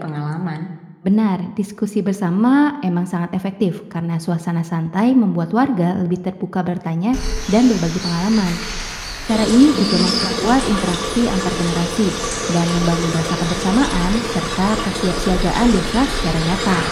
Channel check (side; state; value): both; identical; correlation 1.00